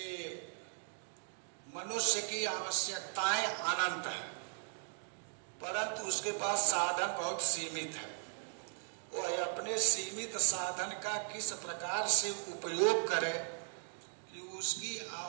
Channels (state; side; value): silent; left; 53 dB below the other